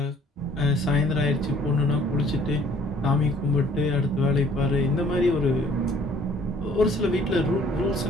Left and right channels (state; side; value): normal; both; correlation 0.57